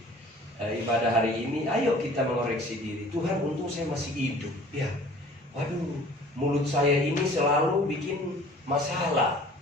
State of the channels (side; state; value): both; normal; correlation 0.49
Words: ibadah hari ini, ayo kita mengoreksi diri. Tuhan, untung saya masih hidup. Ya, waduh, mulut saya ini selalu bikin masalah,